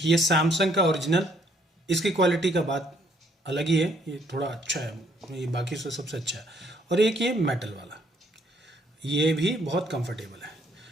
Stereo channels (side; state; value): both; normal; correlation 0.67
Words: ये सैमसंग का ओरिजिनल, इसकी क्वालिटी का बात अलग ही है, ये थोड़ा अच्छा है, ये बाकी से सबसे अच्छा है। और एक ये मेटल वाला, ये भी बहुत कंफर्टेबल है।